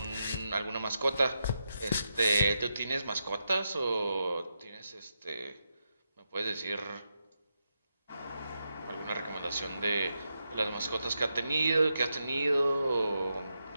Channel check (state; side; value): inverted; both; correlation -0.85